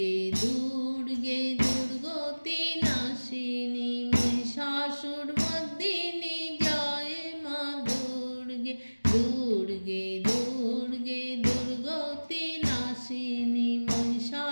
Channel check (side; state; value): both; inverted; correlation -1.00